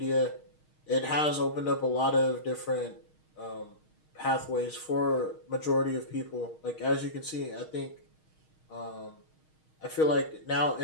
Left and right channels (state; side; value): late; right; 6.4 ms